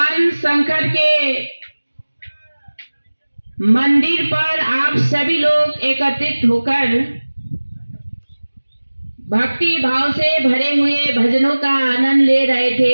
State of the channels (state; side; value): inverted; both; correlation -1.00